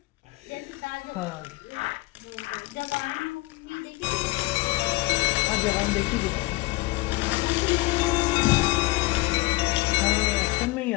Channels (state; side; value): quieter; right; 21.7 dB